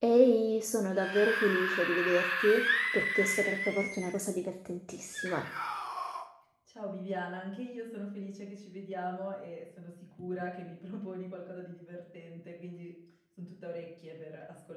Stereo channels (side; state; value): both; identical; correlation 1.00